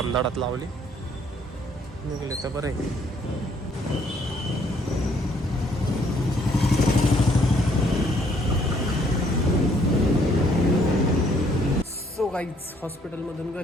लावली. निघले तर बरं आहे. सो गाईज हॉस्पिटलमधून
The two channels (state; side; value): normal; both; correlation 0.65